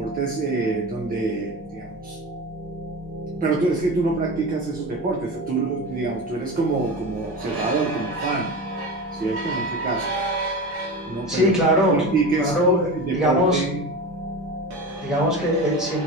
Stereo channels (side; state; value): both; normal; correlation 0.27